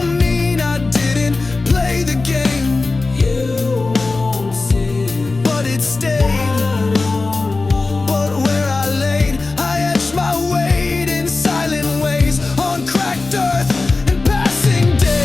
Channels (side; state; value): right; quieter; 3.6 dB